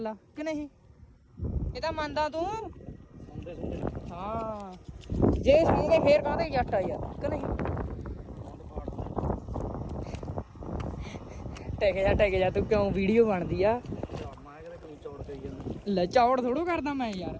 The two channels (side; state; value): both; identical; correlation 1.00